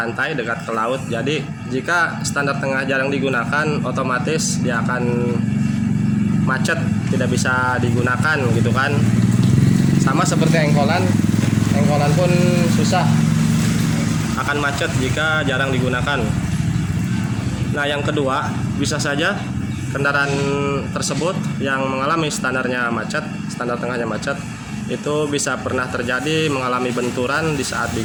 dekat ke laut. Jadi jika standar tengah jarang digunakan, otomatis dia akan macet, tidak bisa digunakan gitu kan. Sama seperti engkolan pun susah, akan macet jika jarang digunakan. Nah, yang kedua, bisa saja kendaraan tersebut yang mengalami standarnya macet, standar tengahnya macet, itu bisa pernah terjadi mengalami benturan di saat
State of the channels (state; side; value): identical; both; correlation 1.00